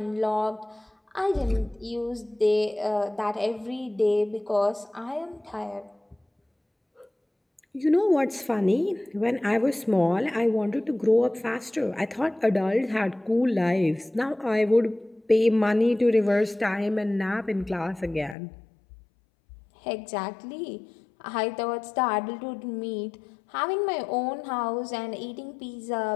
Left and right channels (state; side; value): drops out; right; at 18.4 s